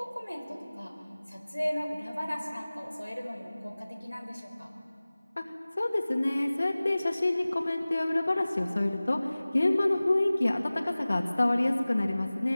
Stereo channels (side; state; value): both; inverted; correlation -0.99